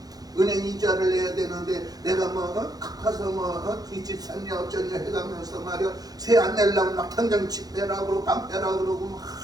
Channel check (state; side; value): late; left; 0.19 ms